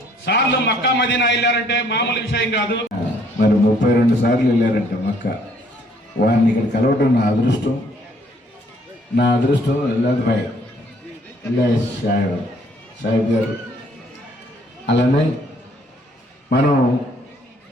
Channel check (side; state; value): both; normal; correlation 0.63